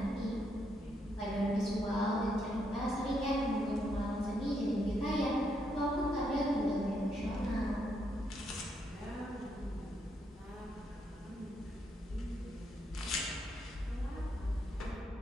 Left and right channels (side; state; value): both; normal; correlation 0.77